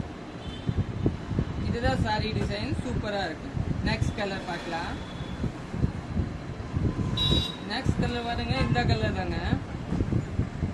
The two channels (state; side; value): identical; both; correlation 1.00